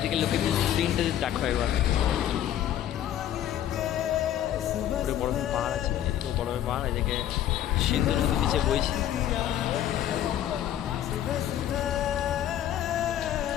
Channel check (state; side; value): quieter; right; 11.3 dB